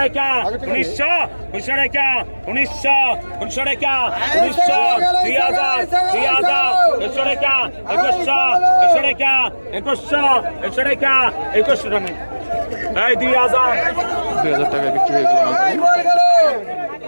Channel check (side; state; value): both; inverted; correlation -1.00